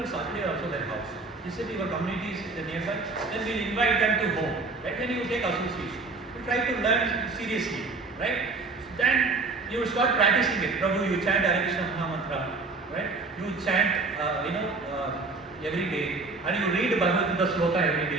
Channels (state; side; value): quieter; left; 3.8 dB